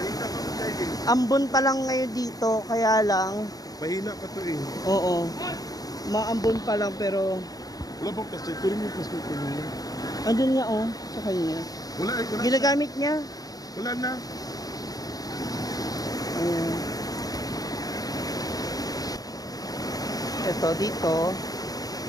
Ambon pa lang ngayon dito, kaya lang. Mahina pa to eh. Oo. Maambon pa lang pero Wala bang plastic? Tuloy yung plastic ko niya. andun nga oh, sa kanya. Wala eh. Wala, Ginagamit niya. wala na. Ayan. Ito dito,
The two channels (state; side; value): late; right; 0.18 ms